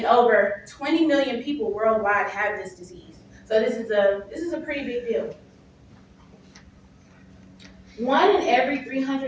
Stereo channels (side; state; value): both; identical; correlation 1.00